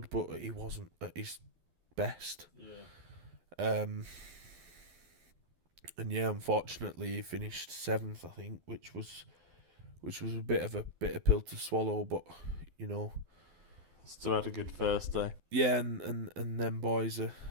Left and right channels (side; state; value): left; late; 12 ms